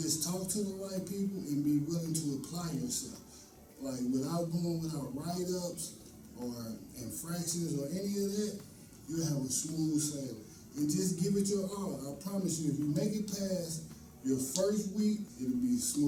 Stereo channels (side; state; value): both; identical; correlation 1.00